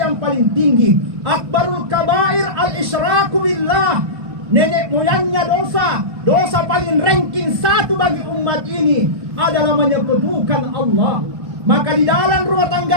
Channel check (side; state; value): left; late; 1.2 ms